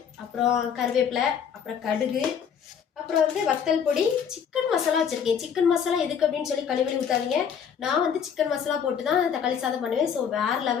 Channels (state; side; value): quieter; right; 7.5 dB